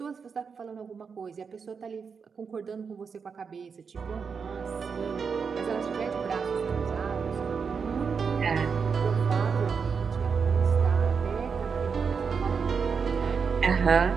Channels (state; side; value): quieter; left; 5.8 dB